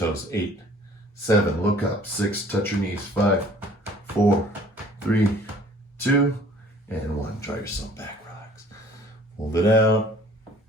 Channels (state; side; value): normal; both; correlation 0.53